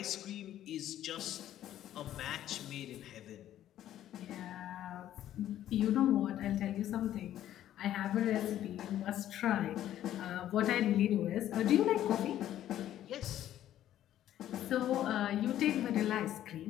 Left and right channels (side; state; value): right; quieter; 12.1 dB